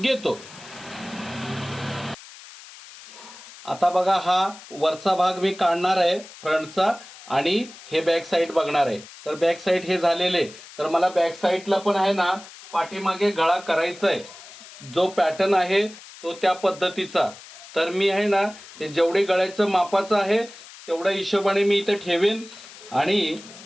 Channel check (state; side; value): noise; left; hiss, 18 dB below the sound